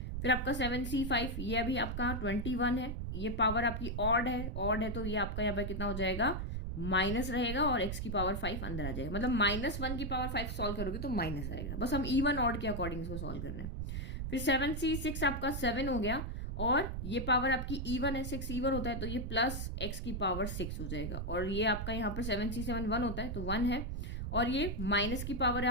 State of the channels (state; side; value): noise; right; rumble, 3 dB below the sound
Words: फिर आपका 7c5, ये अभी आपका 21 है, ये पावर आपकी ऑड है तो ये आपका यहाँ पर कितना हो जाएगा, माइनस रहेगा, और x की पावर 5 अंदर आ जाएगा। मतलब -1 की पावर 5 सॉल्व करोगे तो माइनस आएगा, बस हम इवन ऑड के अकॉर्डिंग इसको सॉल्व कर रहे हैं। फिर 7c6 आपका 7 हो गया, और ये पावर आपकी इवन है, 6 इवन होता है, तो ये प्लस x की पावर 6 हो जाएगा। और ये आपका यहाँ पर 7c7 1 होता है, तो 1 है, और ये माइनस की पावर